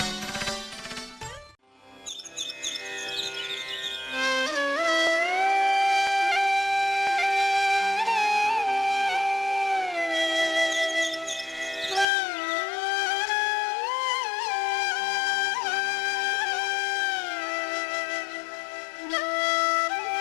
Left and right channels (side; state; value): right; drops out; at 12.1 s